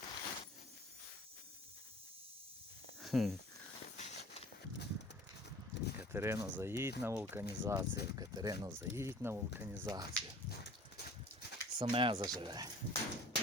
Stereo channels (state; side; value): normal; both; correlation 0.46